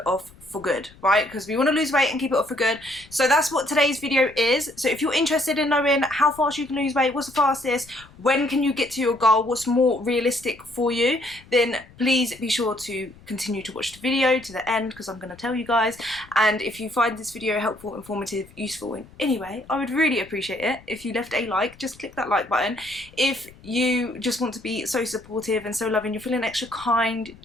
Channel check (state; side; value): noise; left; rumble, 24 dB below the sound